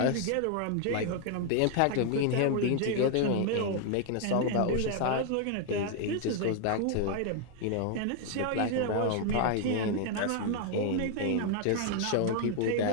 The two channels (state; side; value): different; both; correlation 0.00